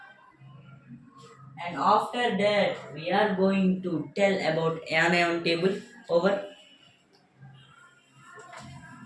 And after that, we are going to tell about anion table. Over.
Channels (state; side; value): identical; both; correlation 1.00